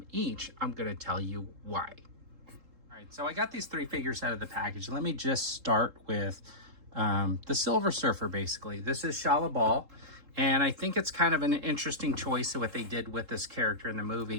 each, I'm gonna tell you why. All right, so I got these three figures out of the package. Let me just start with the Silver Surfer, basically. This is Shalla Ball. And I think it's kind of an interesting choice of what they did with this character in the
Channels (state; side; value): late; left; 3.7 ms